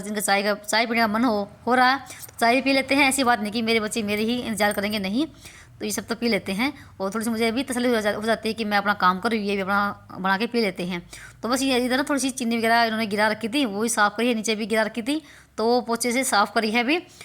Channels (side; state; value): both; identical; correlation 1.00